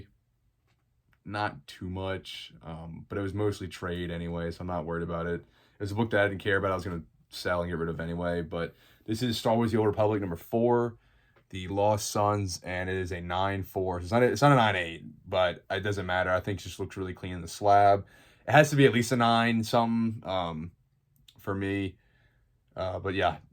Not too much, but it was mostly trade anyway, so I'm not worried about it. It was a book that I didn't care about. I was going to sell and get rid of anyway, but this is Star Wars The Old Republic number 4, The Lost Sons, and it is a 9.4. It's not a 9.8, but it doesn't matter. I think it just looks really clean in the slab. It has to be at least a 9 something for me. But yeah,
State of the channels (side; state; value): both; identical; correlation 1.00